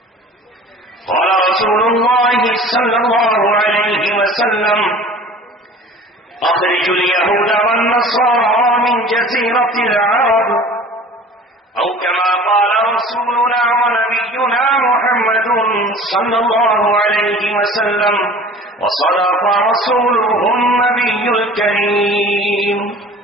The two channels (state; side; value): normal; both; correlation 0.44